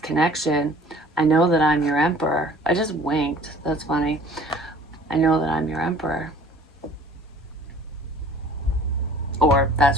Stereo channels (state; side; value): normal; both; correlation 0.50